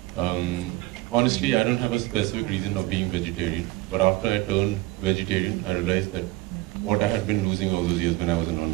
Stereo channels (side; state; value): left; quieter; 19.5 dB